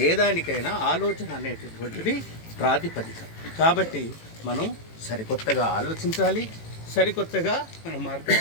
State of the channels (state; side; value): late; right; 18 ms